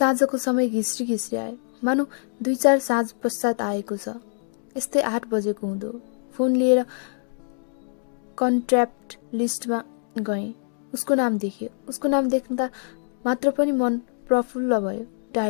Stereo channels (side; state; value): right; silent; digital silence